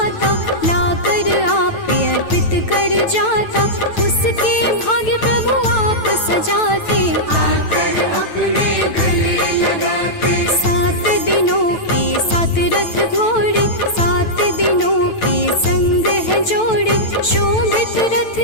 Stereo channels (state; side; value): late; right; 9.1 ms